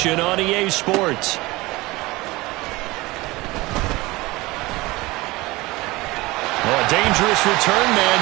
on EA Sports. Oh, a dangerous return man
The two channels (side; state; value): left; quieter; 21.2 dB